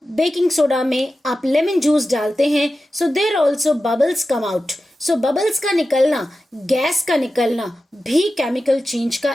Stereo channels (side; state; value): both; normal; correlation 0.93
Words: बेकिंग सोडा में आप लेमन जूस डालते हैं, so there also bubbles come out. So bubbles का निकलना, गैस का निकलना भी केमिकल चेंज का